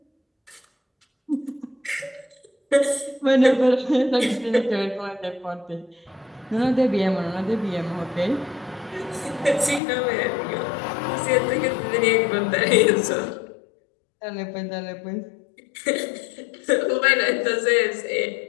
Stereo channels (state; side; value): drops out; right; at 9.8 s